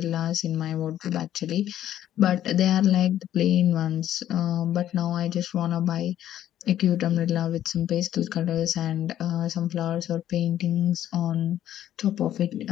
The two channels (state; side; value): quieter; right; 11.7 dB